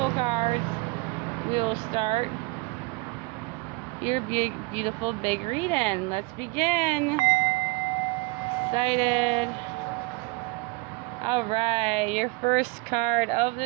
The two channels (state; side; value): quieter; left; 24.9 dB